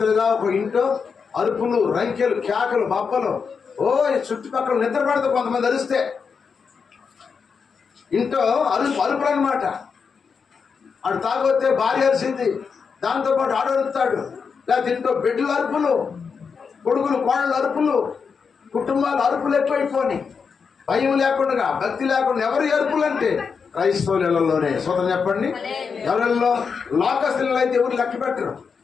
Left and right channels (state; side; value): quieter; right; 5.8 dB